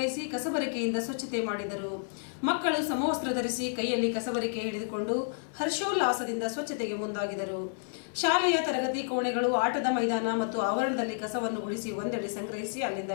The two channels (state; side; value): silent; right; 58 dB below the other